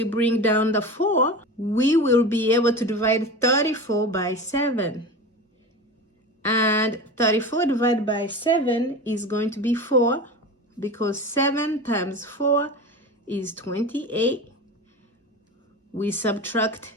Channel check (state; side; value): normal; both; correlation 0.29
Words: bring down the 4, we will be able to divide 34 by 7. And 34 divided by 7 is going to be 4, because 7 times 4 is 28. We subtract